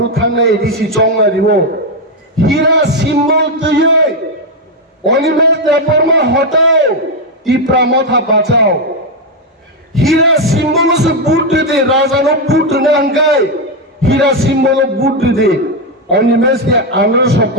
থানে এডিসি চংলা দিব হীরা সিম্বল তুই অনিমেষ দেববর্মা হটাও টিপ্রা মাথা বাঁচাও হীরা সিম্বল সে বুট দে রাজানো বুট নাঙ্গাই হীরা সিম্বল বুট দে অনিমেষ কে আমরা সব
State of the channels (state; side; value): normal; both; correlation 0.04